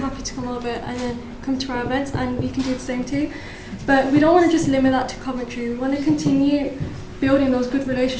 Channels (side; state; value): both; identical; correlation 1.00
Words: to come over and then come to our events, and we can do the same too. But we don't want to just limit that to Coventry. We want to continue building those good